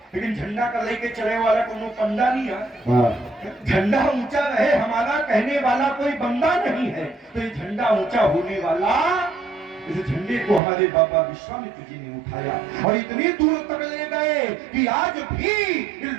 लेकिन झंडा का लेके चले वाला कोनो पंडा नहीं है। झंडा ऊंचा रहे हमारा कहने वाला कोई बंदा नहीं है, तो ये झंडा ऊंचा होने वाला, इस झंडे को हमारे बाबा विश्वामित्र जी ने उठाया और इतनी दूर तक ले गए कि आज भी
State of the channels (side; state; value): left; drops out; at 10.6 s